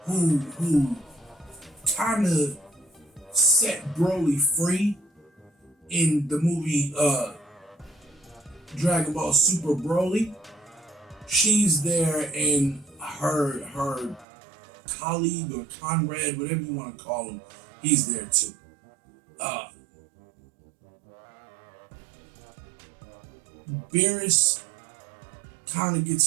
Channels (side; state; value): left; drops out; at 14.2 s